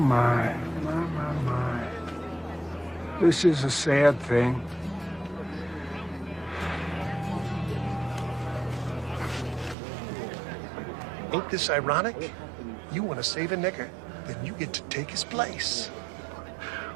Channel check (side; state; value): left; drops out; at 9.8 s